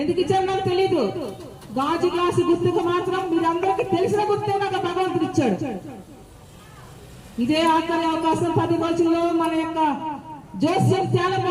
ఇచ్చారో నాకు తెలీదు. గాజు గ్లాసు గుర్తుకు మాత్రం మీరందరికీ తెలిసిన గుర్తే నాకు భగవంతుడు ఇచ్చాడు. ఇదే ఆఖరి అవకాశం. 10 రోజుల్లో మన యొక్క జోస్యం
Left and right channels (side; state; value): both; identical; correlation 1.00